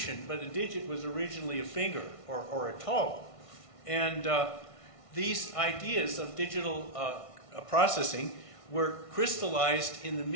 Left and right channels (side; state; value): right; late; 1.5 ms